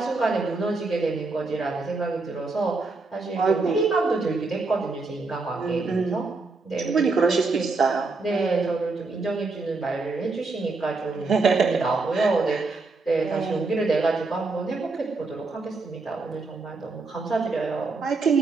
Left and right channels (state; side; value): quieter; left; 3.8 dB